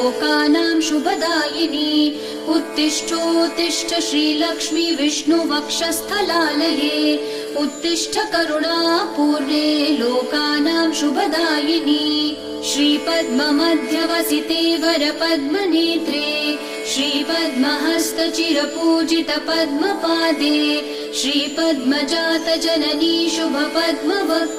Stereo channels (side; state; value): both; identical; correlation 1.00